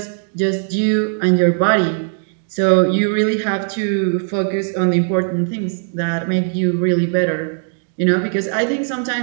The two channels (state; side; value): silent; left; digital silence